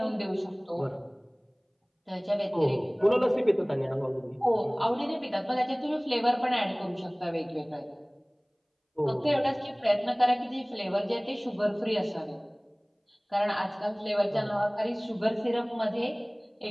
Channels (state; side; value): identical; both; correlation 1.00